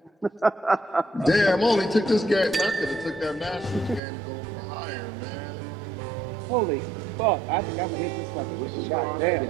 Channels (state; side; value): drops out; left; at 4.0 s